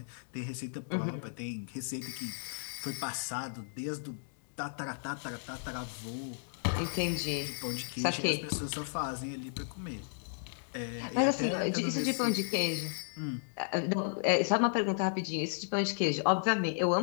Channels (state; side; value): silent; right; digital silence